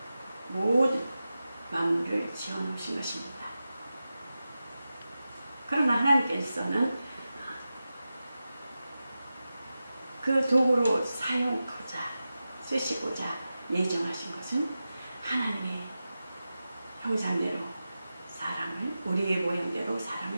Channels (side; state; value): both; inverted; correlation -0.93